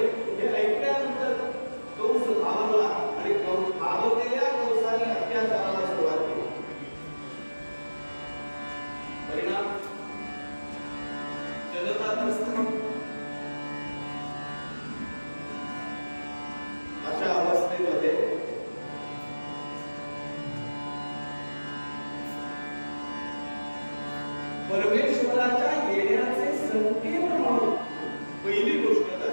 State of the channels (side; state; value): both; inverted; correlation -1.00